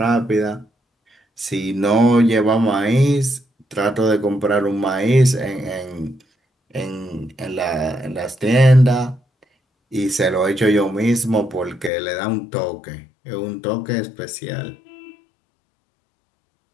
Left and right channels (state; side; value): drops out; right; at 11.9 s